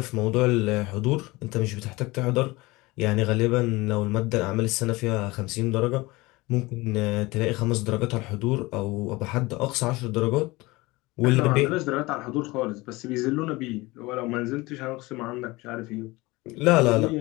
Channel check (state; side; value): quieter; right; 22.0 dB